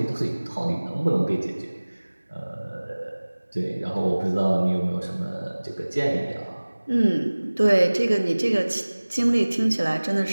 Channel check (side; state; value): both; inverted; correlation -1.00